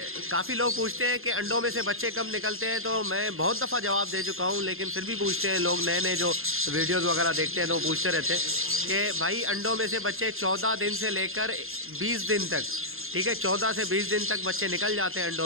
काफ़ी लोग पूछते हैं कि अंडों में से बच्चे कब निकलते हैं, तो मैं बहुत दफ़ा जवाब दे चुका हूँ, लेकिन फिर भी पूछते हैं लोग, नए नए जो वीडियोस वगैरह देखते हैं तो पूछते रहते हैं कि भाई अंडों में से बच्चे 14 दिन से लेकर 20 दिन तक, ठीक है, 14 से 20 दिन तक बच्चे निकल जाते हैं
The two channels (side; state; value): left; late; 0.61 ms